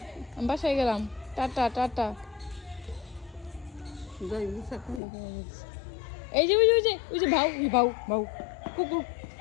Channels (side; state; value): right; drops out; at 5.0 s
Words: বাসায় গেলাম। Tata tata. এই যে ওই যে ভাউ ভাউ ভাউ কুকুর